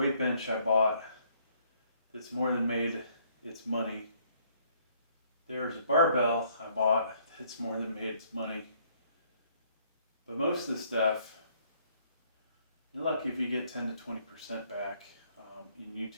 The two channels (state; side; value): inverted; both; correlation -0.65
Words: bench I bought that's more than made its money. There's a barbell I bought that's more than made its money. But most of the stuff, you're lucky if you get 10 to 20% back in